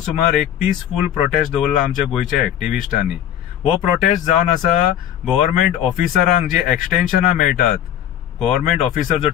एक पीसफूल प्रोटेस्ट दवरला आमच्या गोंयच्या एक्टिव्हिस्टांनी. हो प्रोटेस्ट जावन आसा गव्हर्नमेंट ऑफिसरांक जे एक्सटेन्शनां मेळटात. गव्हर्नमेंट ऑफिसर जो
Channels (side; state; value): right; quieter; 10.7 dB